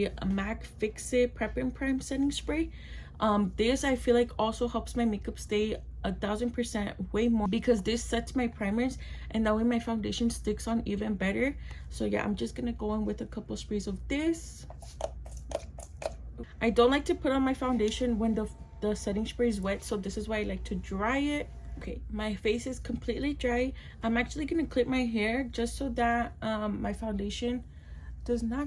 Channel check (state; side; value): identical; both; correlation 1.00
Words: MAC Fix It Prep and Prime setting spray. This I feel like also helps my makeup stay 1000% way more, because this sets my primers and that way my foundation sticks on even better. So yeah, I'm just gonna go in with a couple sprays of this. I don't like to put on my foundation when the setting spray is wet, so this is why I like to dry it. Okay, my face is completely dry. I'm actually gonna clip my hair just so that my foundation does